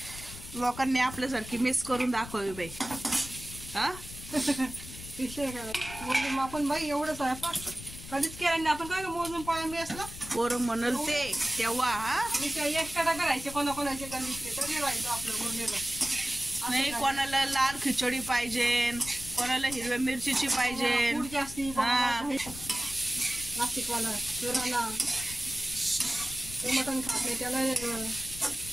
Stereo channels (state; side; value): noise; left; rumble, 13 dB below the sound